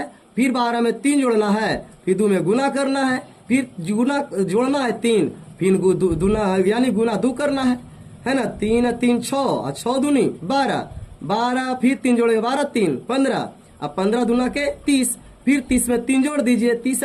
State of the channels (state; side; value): identical; both; correlation 1.00